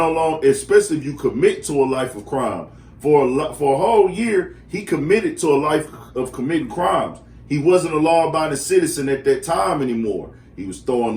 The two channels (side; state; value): both; identical; correlation 1.00